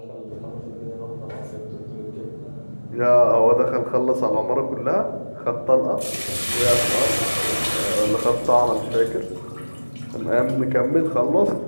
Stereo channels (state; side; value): inverted; both; correlation -1.00